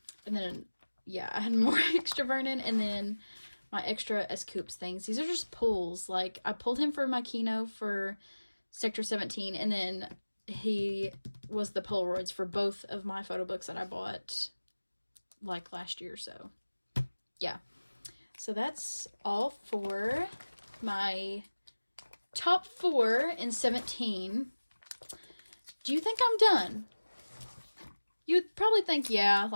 And then, yeah, I had more extra Vernon, and then my extra S-Coops things. These are just pulls. Like, I pulled him for my Kino for Sector 17, and then he was the Polaroids for both of my photo books that I bought, like, last year, so, yeah. So that's all for my top 4 in 17. Do you think I'm done? You'd probably think, yeah,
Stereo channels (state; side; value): inverted; both; correlation -1.00